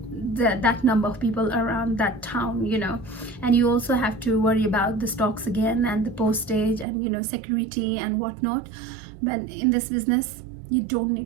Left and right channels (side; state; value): left; drops out; at 6.9 s